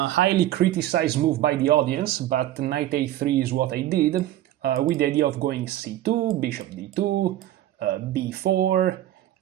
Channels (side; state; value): left; quieter; 13.8 dB